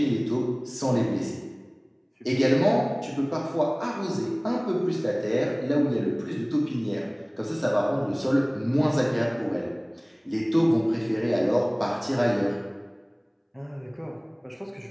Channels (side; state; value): both; identical; correlation 1.00